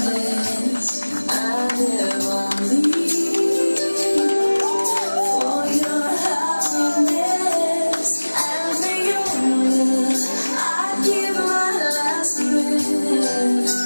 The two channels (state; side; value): inverted; both; correlation -1.00